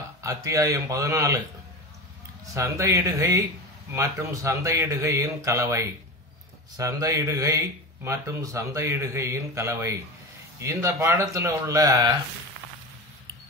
அத்தியாயம் 14 சந்தையிடுகை மற்றும் சந்தையிடுகையின் கலவை. சந்தையிடுகை மற்றும் சந்தையிடுகையின் கலவை. இந்த பாடத்தில் உள்ள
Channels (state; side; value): normal; both; correlation 0.25